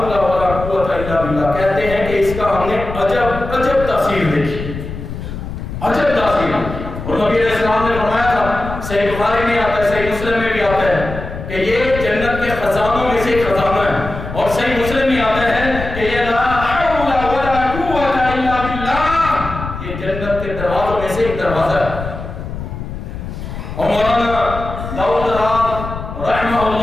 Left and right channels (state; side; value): noise; left; rumble, 8 dB below the sound